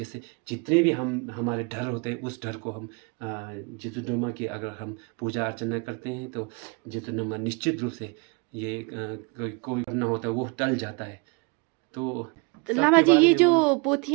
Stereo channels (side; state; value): left; quieter; 31.1 dB